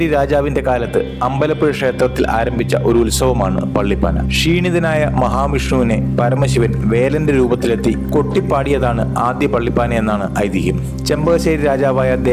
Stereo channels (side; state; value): both; identical; correlation 1.00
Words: രാജാവിന്റെ കാലത്ത് അമ്പലപ്പുഴ ക്ഷേത്രത്തിൽ ആരംഭിച്ച ഒരു ഉത്സവമാണ് പള്ളിപ്പാന. ക്ഷീണിതനായ മഹാവിഷ്ണുവിനെ പരമശിവൻ വേലന്റെ രൂപത്തിലെത്തി കൊട്ടിപ്പാടിയതാണ് ആദ്യ പള്ളിപ്പാന എന്നാണ് ഐതിഹ്യം. ചെമ്പകശ്ശേരി രാജാവായ